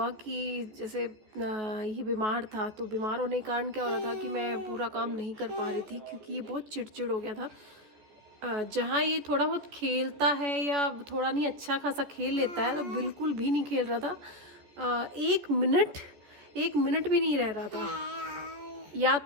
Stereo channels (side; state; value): left; late; 14 ms